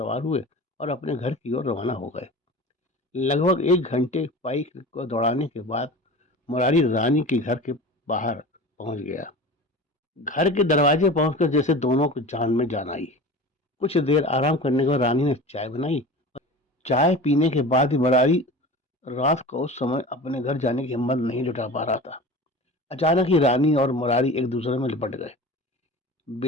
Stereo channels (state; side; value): normal; both; correlation 0.35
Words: हुए और अपने घर की ओर रवाना हो गए। लगभग एक घंटे बाइक को दौड़ाने के बाद मुरारी रानी के घर के बाहर पहुंच गया। घर के दरवाजे पहुंचकर जैसे दोनों को जान में जान आई। कुछ देर आराम करने के बाद रानी ने चाय बनाई। चाय पीने के बाद ही मुरारी रात को उस समय अपने घर जाने की हिम्मत नहीं जुटा पा रहा था। अचानक ही रानी और मुरारी एक दूसरे में लिपट गए।